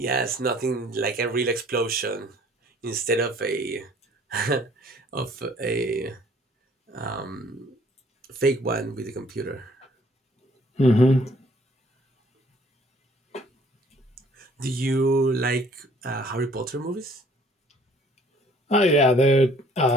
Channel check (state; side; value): normal; both; correlation 0.58